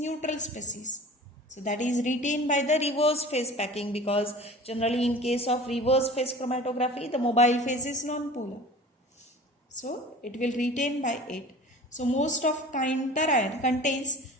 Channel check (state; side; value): normal; both; correlation 0.41